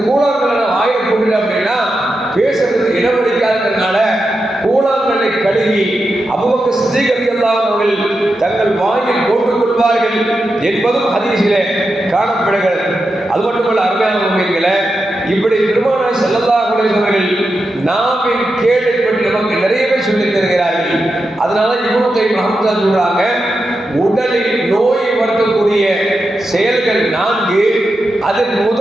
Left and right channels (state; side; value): normal; both; correlation 0.88